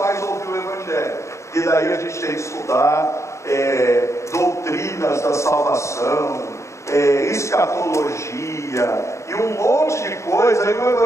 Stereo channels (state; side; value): late; right; 0.14 ms